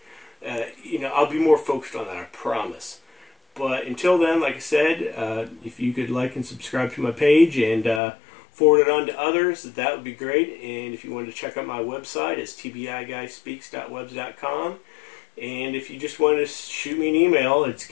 you know, I'll be more focused on that, I promise. But until then, like I said, if you could like and subscribe to my page and forward it on to others, that would be great. And if you wanted to check out my website, it's tbi-guyspeaks.webs.com. And if you just wanted to shoot me an email, it's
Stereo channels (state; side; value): drops out; right; at 8.0 s